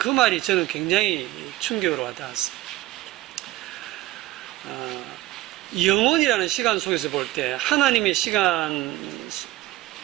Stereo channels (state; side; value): quieter; left; 16.7 dB